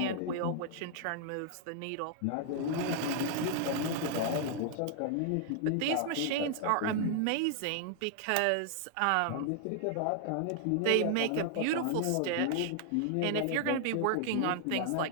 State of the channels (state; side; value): different; both; correlation 0.00